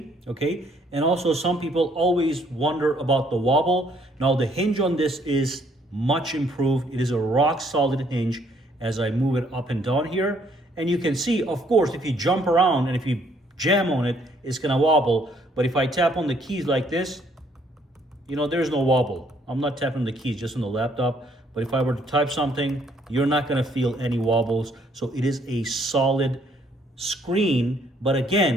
okay? And also some people always wonder about the wobble. Now, the hinge on this is much improved. It is a rock solid hinge as I move it up and down here. And you can see, of course, if you jump around and if you jam on it, it's gonna wobble. But if I tap on the keys like this, you know, there's no wobble. I'm not tapping the keys just on the laptop. But if I were to type something, you're not gonna feel any wobbles. So it is a solid screen. But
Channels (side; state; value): both; normal; correlation 0.66